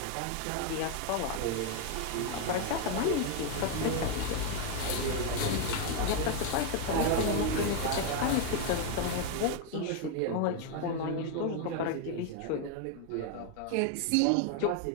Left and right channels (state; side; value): different; both; correlation 0.01